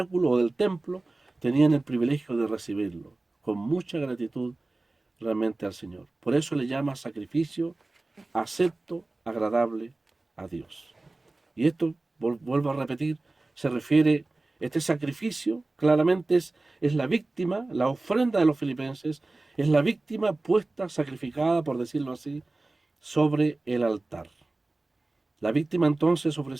o del templo, tenían el privilegio de recibirlo, con mucha gratitud realmente al Señor. Por eso le llama sacrificio acepto, agradable a Dios. Y esto, vuelvo a repetir, se refiere, este sacrificio claramente es la víctima, la ofrenda de los filipenses, es la víctima puesta, sacrificada, por decirlo así, sobre el altar. La víctima entonces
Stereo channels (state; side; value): quieter; left; 3.1 dB